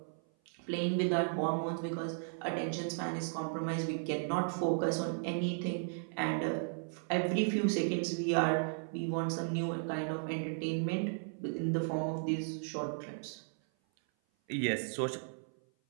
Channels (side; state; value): left; silent; 54 dB below the other